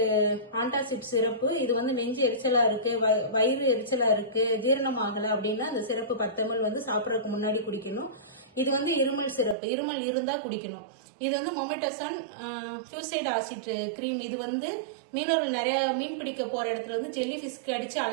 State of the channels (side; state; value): left; drops out; at 9.6 s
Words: ஆன்டாசிட் சிறப்பு. இது வந்து நெஞ்சு எரிச்சலா இருக்கு, வயிறு எரிச்சலா இருக்கு, ஜீரணம் ஆகல அப்படின்னா அந்த சிறப்பு 10 ml வந்து சாப்பிடறதுக்கு முன்னாடி குடிக்கணும். இது வந்து இருமல் சிறப்பு, இருமல் இருந்தா குடிக்கணும். இது வந்து மொமெட்டசான் ஃப்ளூசைட் ஆசிட் கிரீம். இது வந்து மீனவர்கள் நிறைய மீன் பிடிக்க போற இடத்துல வந்து ஜெல்லி ஃபிஷ்க்கு அடிச்சு